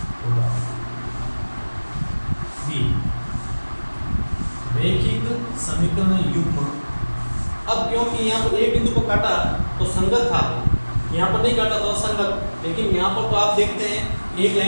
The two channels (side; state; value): both; inverted; correlation -1.00